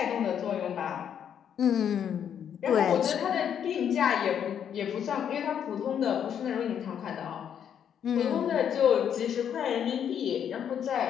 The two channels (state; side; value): quieter; right; 8.7 dB